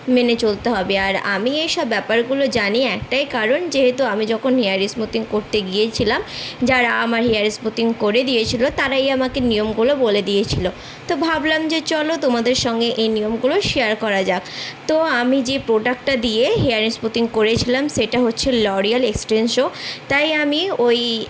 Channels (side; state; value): both; identical; correlation 1.00